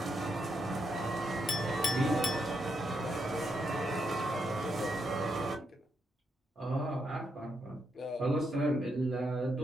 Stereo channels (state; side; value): normal; both; correlation 0.80